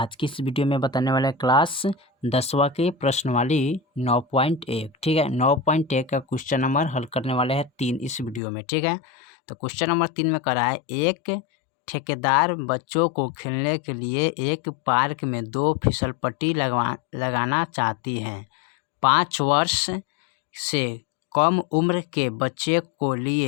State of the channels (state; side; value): drops out; right; at 8.4 s